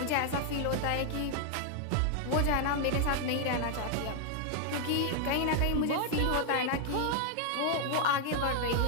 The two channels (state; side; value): different; both; correlation 0.00